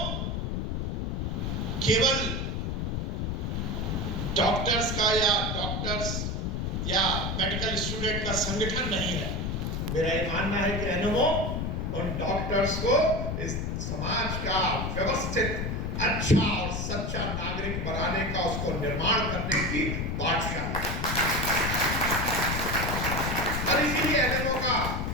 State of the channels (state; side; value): noise; left; rumble, 1 dB below the sound